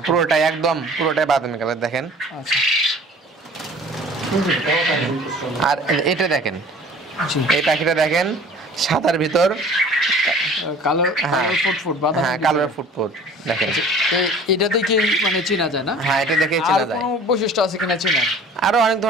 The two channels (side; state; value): both; normal; correlation 0.47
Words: পুরোটাই একদম পুরোটাই বাদামি কালার দেখেন। আচ্ছা। আর এটা দেখেন, জি। এই পাখিটা দেখেন সাদার ভিতর কালার হ্যাঁ। ফুট বাদামি। হ্যাঁ কালার ফুটফুট দেখেন। এটা দেখে মানে চেনা যায় না? হ্যাঁ এটা দেখে আর চেনা যায়। কোনো বৈশিষ্ট্য আছে কিনা চেনা? আরো অনেক